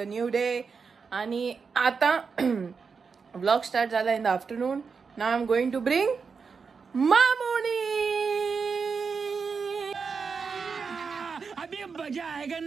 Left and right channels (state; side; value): quieter; left; 5.4 dB